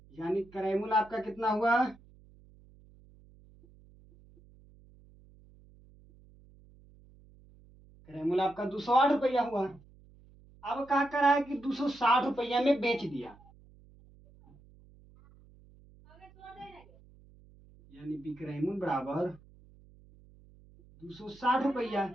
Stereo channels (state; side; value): noise; right; hum, 26 dB below the sound